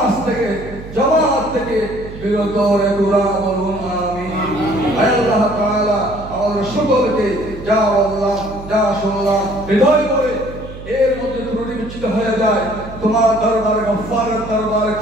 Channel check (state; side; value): noise; right; hum, 13 dB below the sound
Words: থেকে, জামাত থেকে বিরত রেখো, বলুন আমিন। আয় আল্লাহ তাআলা আমাদের সকলকে যা বললাম, যা শুনলাম হৃদয় করে এর মধ্যে ত্রুটি বিচ্যুত হয়ে যায় তোমার দরবারে, গফফারের দরবারে